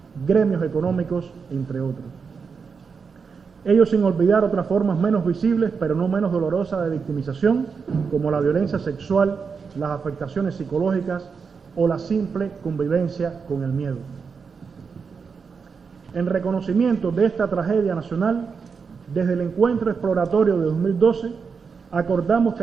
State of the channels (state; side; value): quieter; left; 5.6 dB